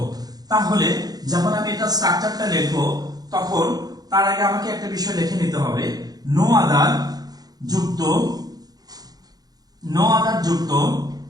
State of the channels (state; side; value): late; left; 0.19 ms